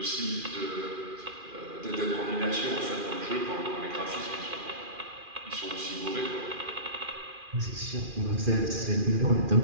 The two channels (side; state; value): left; late; 2.4 ms